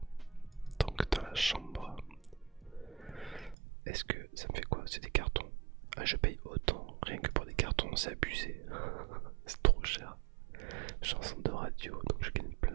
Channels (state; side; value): drops out; left; at 3.6 s